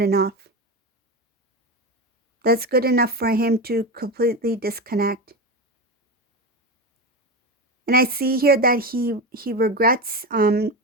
That's good enough for him to completely disconnect. And I see here that he regrets not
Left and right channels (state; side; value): normal; both; correlation 0.20